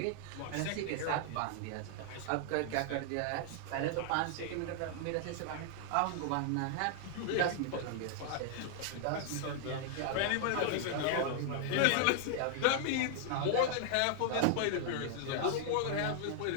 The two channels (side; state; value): both; different; correlation 0.00